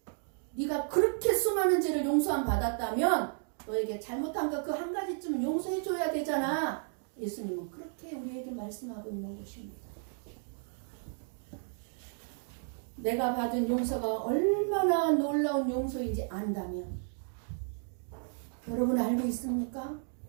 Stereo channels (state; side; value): silent; left; 56 dB below the other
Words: 네가 그렇게 수많은 죄를 용서함 받았다면 너에게 잘못한 거 그 한 가지쯤은 용서해 줘야 되잖아. 예수님은 그렇게 우리에게 말씀하고 있는 것입니다. 내가 받은 용서가 얼마나 놀라운 용서인지 안다면 여러분 알고 있습니까?